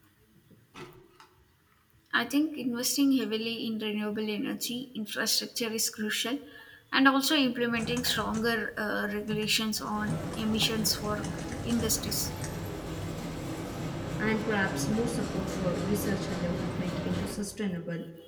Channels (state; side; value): identical; both; correlation 1.00